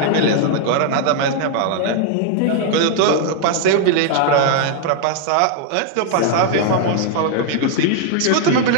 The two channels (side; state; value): both; different; correlation 0.00